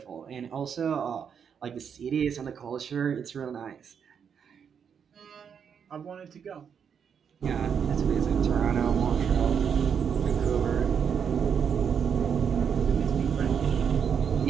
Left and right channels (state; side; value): quieter; left; 7.3 dB